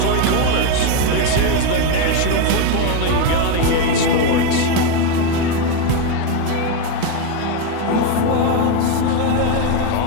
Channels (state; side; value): different; both; correlation 0.03